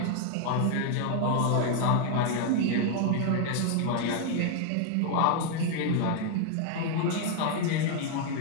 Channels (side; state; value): both; different; correlation 0.00